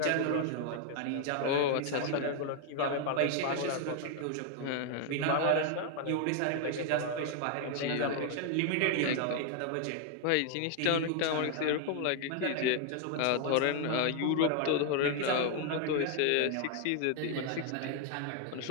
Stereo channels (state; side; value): different; both; correlation 0.00